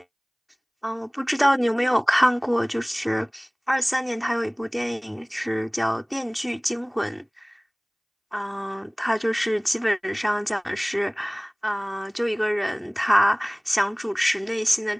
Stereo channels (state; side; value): identical; both; correlation 1.00